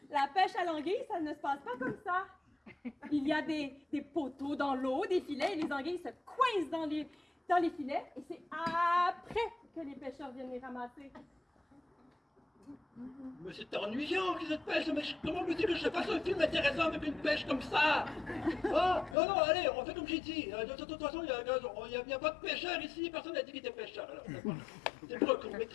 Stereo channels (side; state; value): right; drops out; at 19.2 s